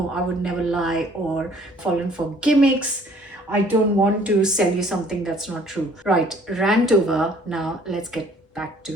I would never lie or fallen for gimmicks. I don't want to sell you something that's not true. Right, rant over. Now let's get back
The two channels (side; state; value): both; normal; correlation 0.57